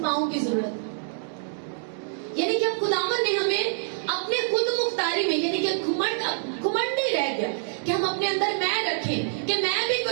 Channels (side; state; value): left; silent; digital silence